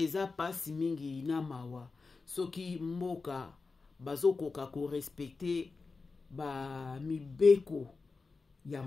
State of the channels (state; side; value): quieter; right; 4.2 dB